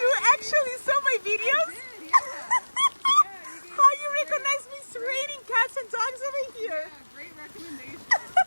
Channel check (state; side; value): inverted; both; correlation -1.00